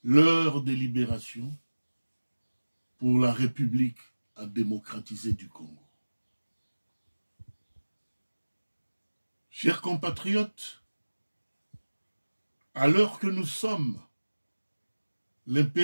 l'heure de libération pour la République à démocratiser du Congo ». Chers compatriotes, à l'heure que nous sommes,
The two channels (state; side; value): inverted; both; correlation -1.00